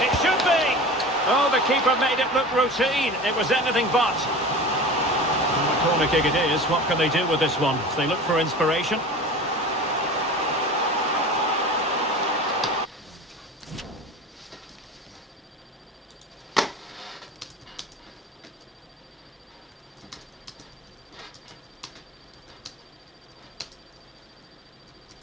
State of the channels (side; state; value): both; normal; correlation 0.35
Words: It should be. Oh, the keeper made it look routine. It was anything but. And the corner kick it is. What can they do with this one? They look for inspiration.